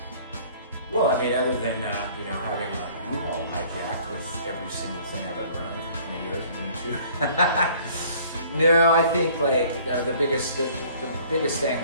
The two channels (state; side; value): inverted; both; correlation -0.54